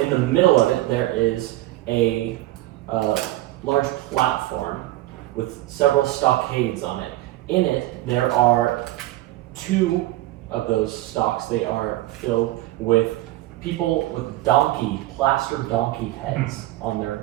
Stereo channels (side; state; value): left; quieter; 16.7 dB